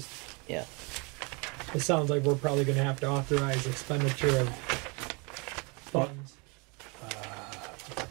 Yeah. It sounds like we're probably going to have to authorize expenditure of funds.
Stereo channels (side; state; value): left; quieter; 30.4 dB